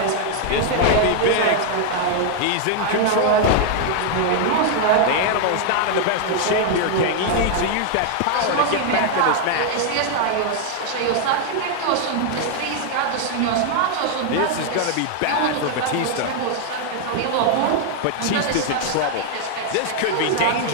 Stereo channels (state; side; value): different; both; correlation 0.00